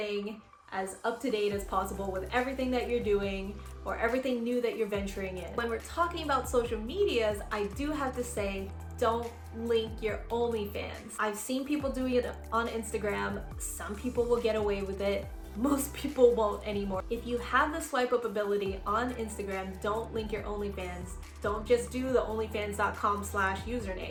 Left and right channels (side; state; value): both; identical; correlation 1.00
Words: as up to date as possible with everything that you're doing or everything new that you're venturing in. When we're talking about social medias, I do have to say, don't link your OnlyFans. I've seen people doing it on Instagram. Some people will get away with it. Most people won't anymore. If you have the swipe up ability on Instagram, don't link your OnlyFans. Don't just do the